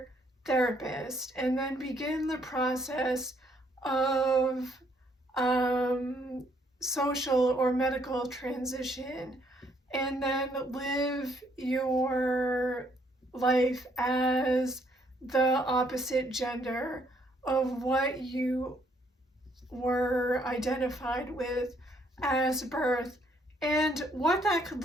therapist and then begin the process of social or medical transition and then live your life as the opposite gender of what you were identified with as birth, and what that could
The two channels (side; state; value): both; normal; correlation 0.69